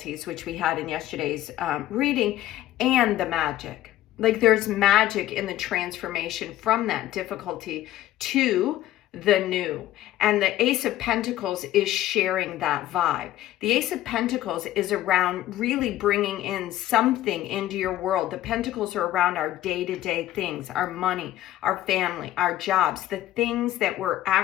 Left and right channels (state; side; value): quieter; right; 14.0 dB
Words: which we had in yesterday's reading, and the magic. Like, there's magic in the transformation from that difficulty to the new. And the Ace of Pentacles is sharing that vibe. The Ace of Pentacles is around really bringing in something into your world. The Pentacles are around our day-to-day things, our money, our family, our jobs, the things that we're